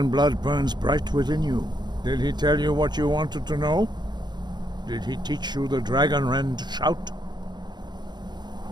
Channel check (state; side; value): late; left; 0.21 ms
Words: blood burns bright within you. Did he tell you what you wanted to know? Did he teach you the dragon rend shout?